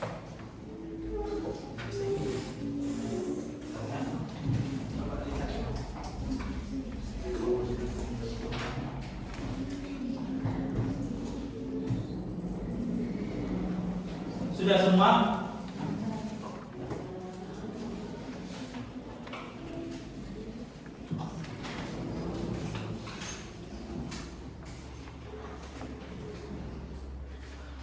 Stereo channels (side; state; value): both; identical; correlation 1.00